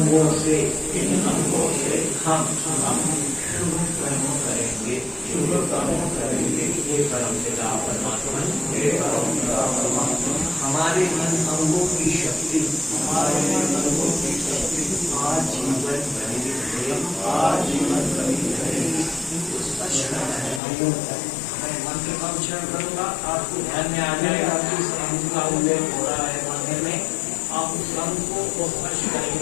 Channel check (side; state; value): right; drops out; at 20.6 s